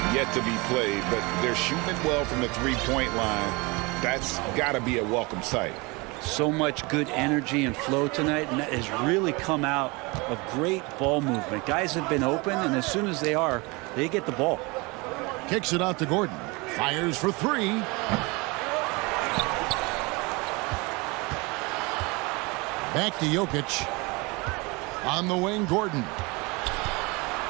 yet to be played, but they're shooting it well from the three-point line. That's got to be a welcome sight. So much good energy and flow tonight, and that has really come out of great ball movement. Guys have been open, and as soon as they are, they get the ball. Kicks it out to Gordon. Fires for three. Back to Jokic. On the wing, Gordon.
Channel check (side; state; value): left; quieter; 26.4 dB